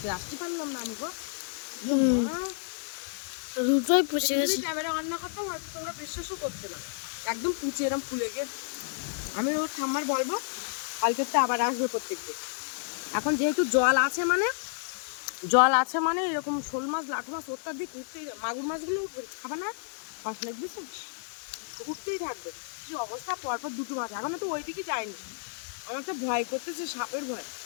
আসতে পারলাম না আমি গো। হুম, মা, দুটোই পচে এটা যদি গেছে। ক্যামেরা অন না করতাম হয়তো তোমরা বিশ্বাসও করতে না। একদম পুচে এরম ফুলে গিয়ে, আমি ওর ঠাম্মার বলবো কালকে তো আবার আসবে প্রত্যেকদিন। এখন যেহেতু জল আছে মানে, জল আছে মানে এরকম শোল মাছ লাঠু মাছ অত্যাধিক উঠতেই, মাগুর মাছগুলো উঠবে খাবে না, মাছ লাগবে উঠতেই থাকবে। কি অবস্থা, পরপর দুটো মাছ, এখনো তো ওই দিকে যায়নি। আমার তো ভয় করতেছে, সাপের ভয়,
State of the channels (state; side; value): silent; right; digital silence